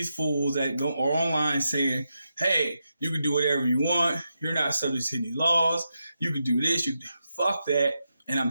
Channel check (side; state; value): both; inverted; correlation -0.86